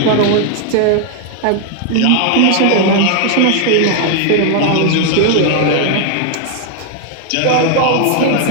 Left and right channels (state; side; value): different; both; correlation 0.00